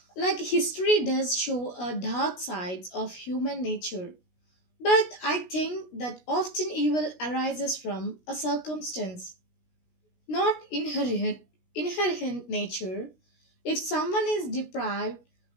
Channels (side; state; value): right; late; 16 ms